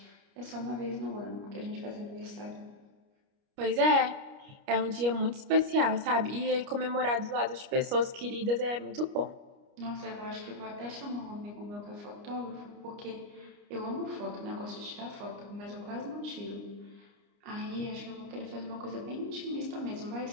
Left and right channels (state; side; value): late; left; 29 ms